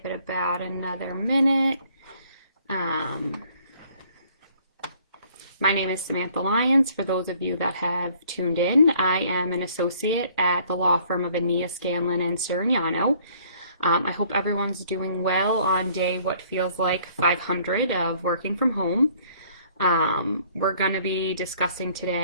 it about another minute. My name is Samantha Lyons. For those of you that have tuned in, I am an associate at the law firm of Ania, Scanlon, and Sirignano. I hope everyone's doing well on day what feels like 500 of working from home. We're going to be discussing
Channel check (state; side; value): inverted; both; correlation -0.59